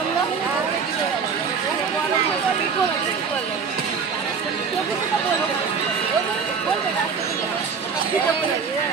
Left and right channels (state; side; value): quieter; left; 5.8 dB